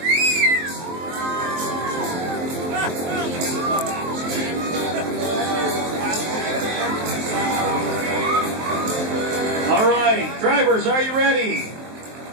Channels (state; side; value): late; left; 23 ms